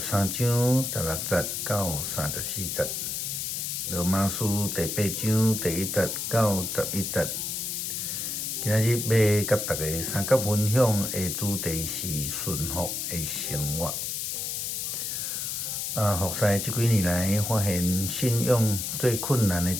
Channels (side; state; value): left; noise; hiss, 3 dB below the sound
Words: 章16节到34节。罗马书第8章第1节到11节。今仔日要甲大家三角分享的主题是顺服的生活。服侍这几年来，发现信仰最困难的一